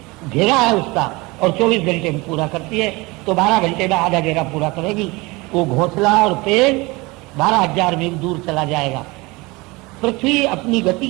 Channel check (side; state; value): left; quieter; 23.8 dB